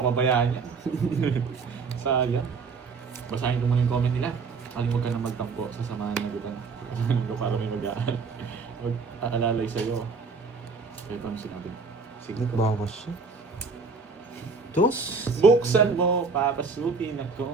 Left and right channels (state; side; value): quieter; left; 4.6 dB